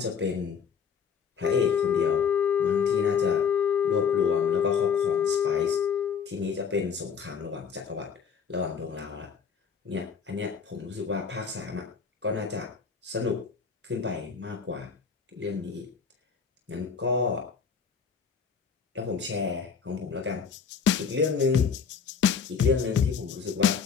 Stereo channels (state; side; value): quieter; right; 6.4 dB